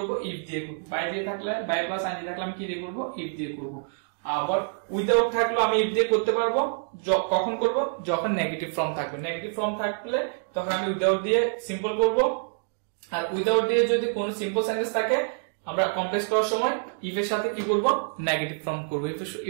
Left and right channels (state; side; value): silent; left; digital silence